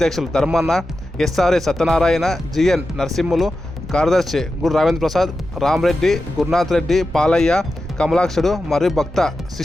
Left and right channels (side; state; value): both; normal; correlation 0.91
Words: ధర్మన్న, ఎస్ఆర్ఏ సత్యనారాయణ, జిఎన్ నరసింహులు, కార్యదర్శి గురు రావేంద్ర ప్రసాద్, రామరెడ్డి, గురునాథ్ రెడ్డి, పాలయ్య, కమలాక్షుడు మరియు భక్త